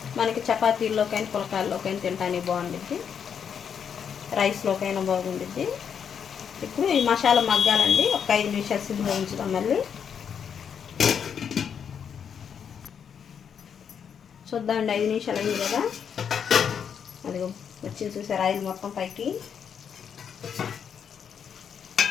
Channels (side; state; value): right; quieter; 7.6 dB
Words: మనకి, చపాతీల్లోకైనా పులకాల్లోకైనా తినడానికి బాగుండిద్ది, రైస్లోకైనా బాగుండిద్ది. ఇప్పుడు ఈ మసాలా మగ్గాలండి. ఒక 5 నిమిషాలు సిమ్లో ఉంచుదాం. మళ్ళీ చూద్దామండి. 5 నిమిషాలు అయింది కదా, అది వచ్చింది చూసారు ఆయిల్ మొత్తం పైకి.